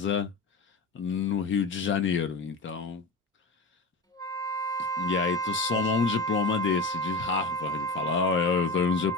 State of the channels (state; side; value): quieter; right; 3.4 dB